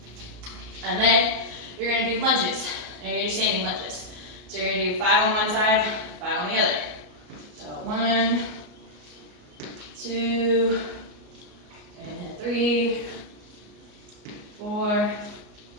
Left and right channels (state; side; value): late; left; 33 ms